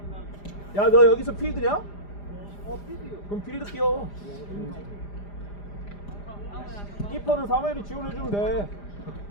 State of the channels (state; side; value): late; right; 5.0 ms